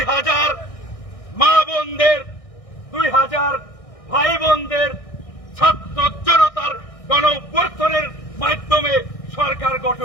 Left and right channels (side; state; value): right; late; 1.6 ms